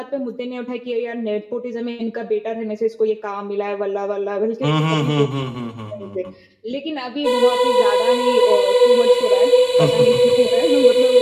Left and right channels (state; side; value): identical; both; correlation 1.00